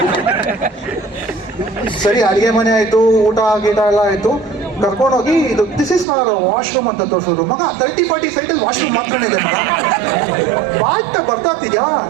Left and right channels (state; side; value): drops out; left; at 6.1 s